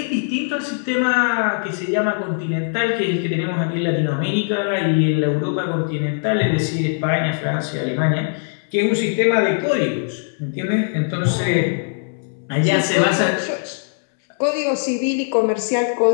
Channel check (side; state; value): right; silent; 65 dB below the other